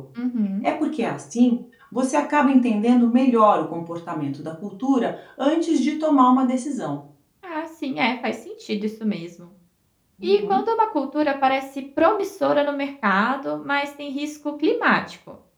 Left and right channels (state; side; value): identical; both; correlation 1.00